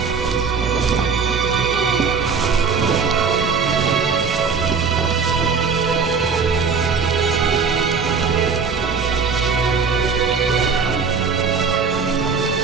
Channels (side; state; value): left; quieter; 5.5 dB